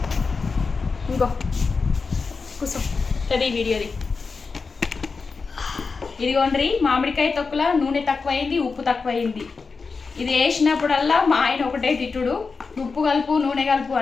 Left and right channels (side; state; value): right; quieter; 4.6 dB